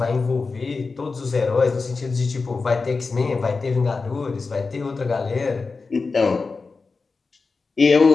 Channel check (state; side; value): quieter; right; 4.2 dB